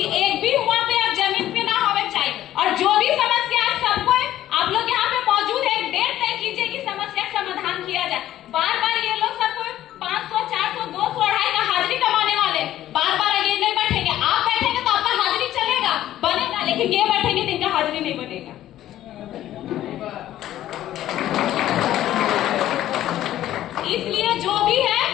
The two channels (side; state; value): right; quieter; 13.1 dB